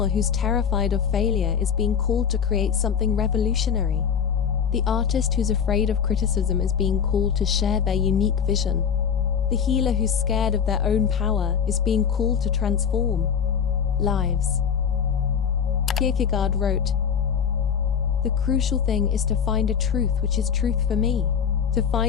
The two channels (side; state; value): right; quieter; 7.4 dB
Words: who's terrified of failure is being called to create something revolutionary. The artist who's afraid of criticism is being called to share their unique vision. The healer who's scared of their own power is being called to transform lives. Kierkegaard wrote, "The crucial thing is to find a truth which is truth for me, to